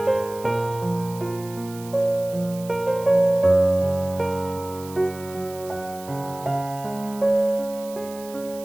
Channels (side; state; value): right; noise; hiss, 18 dB below the sound